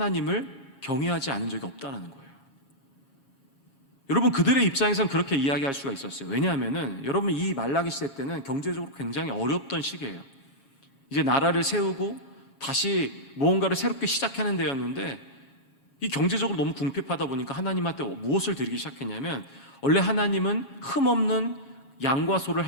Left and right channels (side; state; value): right; late; 6.6 ms